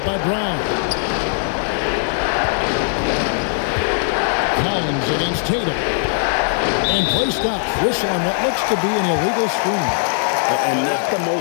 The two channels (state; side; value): silent; right; digital silence